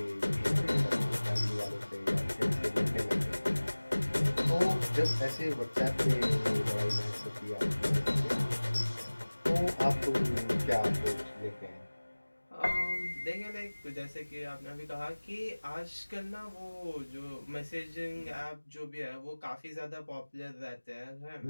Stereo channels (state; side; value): inverted; both; correlation -1.00